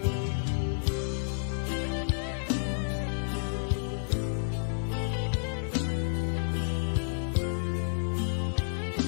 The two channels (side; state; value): right; silent; digital silence